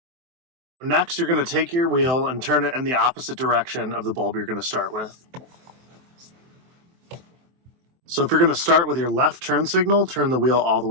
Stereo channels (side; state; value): left; late; 23 ms